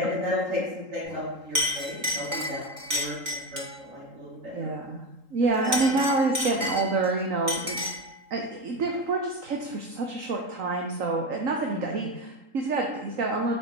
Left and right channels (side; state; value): left; late; 3.8 ms